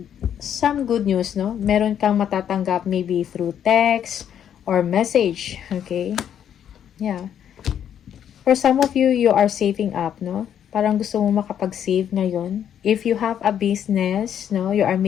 some good news, no? Meron kang matatanggap maybe through text or message. Okay? Yeah. For some of you, you are saving up, no? Parang gusto mo makapag-save ngayon. If you have a business, no, you are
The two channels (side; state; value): right; quieter; 9.4 dB